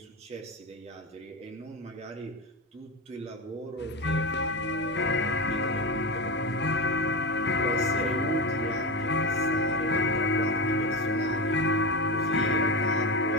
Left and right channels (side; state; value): both; normal; correlation 0.19